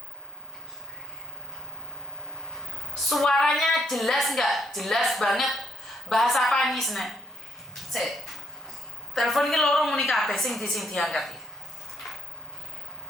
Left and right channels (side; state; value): both; normal; correlation 0.70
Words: Suaranya jelas nggak? Jelas banget. Bahasa apa nih sene? Sik. Telepon ini loro muni kabeh sing diangkat.